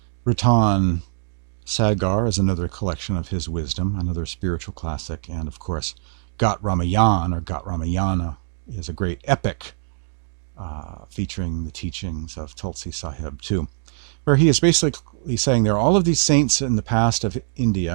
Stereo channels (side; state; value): left; silent; digital silence